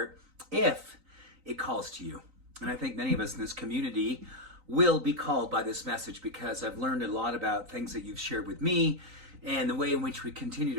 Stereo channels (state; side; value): late; left; 3.9 ms